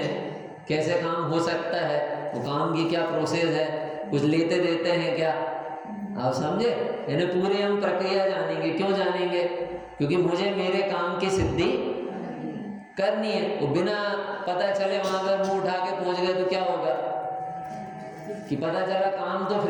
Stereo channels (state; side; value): identical; both; correlation 1.00